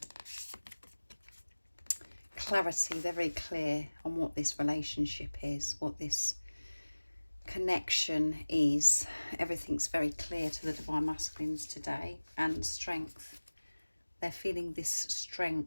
Clarity. They're very clear on what this relationship is, what this connection is. Everything's very clear to the Divine Masculines today. And strength. They're feeling this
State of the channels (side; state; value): both; inverted; correlation -1.00